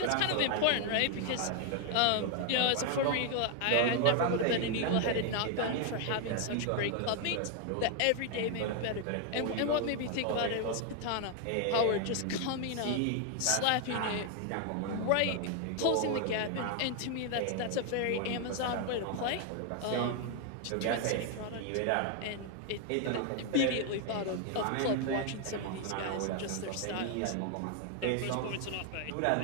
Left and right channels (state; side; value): different; both; correlation 0.00